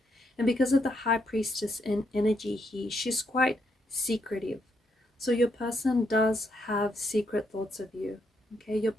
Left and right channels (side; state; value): both; normal; correlation 0.77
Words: And because of the High Priestess and energy here, she's quite secretive. So your person does have secret thoughts of you, okay? Your